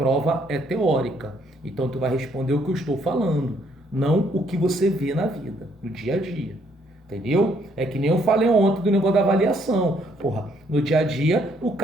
é teórica. Então, tu vai responder o que eu estou falando, não o que você vê na vida, no dia a dia. Entendeu? É que nem eu falei ontem do negócio da avaliação. Porra, no dia a dia, o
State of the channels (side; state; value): both; normal; correlation 0.68